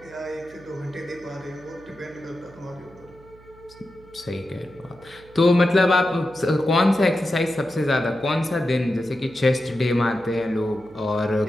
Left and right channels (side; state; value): right; noise; hum, 24 dB below the sound